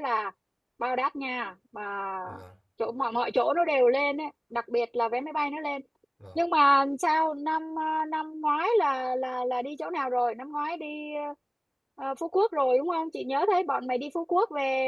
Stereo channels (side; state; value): both; identical; correlation 1.00